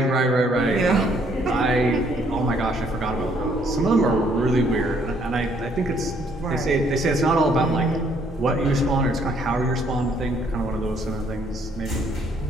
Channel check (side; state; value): both; normal; correlation 0.66